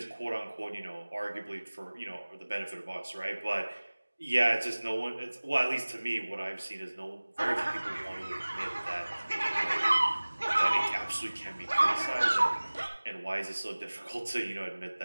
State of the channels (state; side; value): inverted; both; correlation -1.00